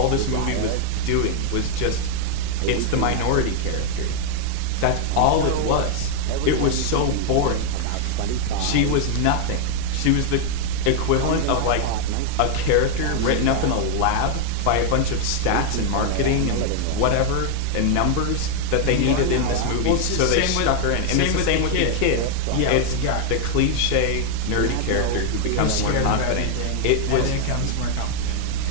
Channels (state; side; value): different; both; correlation 0.00